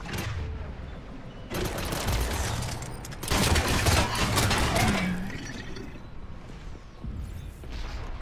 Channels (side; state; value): both; identical; correlation 1.00